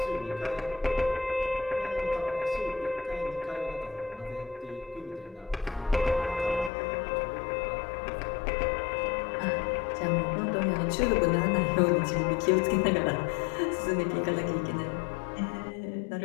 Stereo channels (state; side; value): drops out; right; at 6.7 s